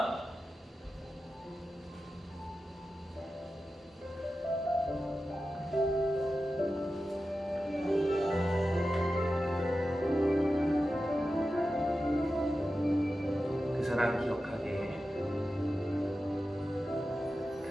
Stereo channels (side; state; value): both; normal; correlation 0.92